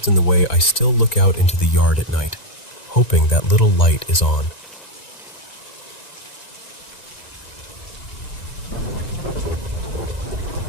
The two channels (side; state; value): right; late; 1.9 ms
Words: in the way I still look out into the yard at night, hoping that little light is on.